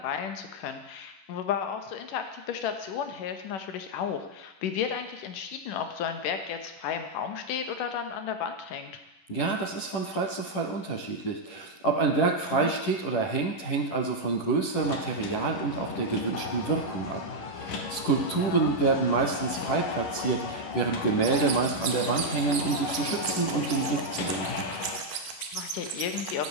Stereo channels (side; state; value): right; late; 11 ms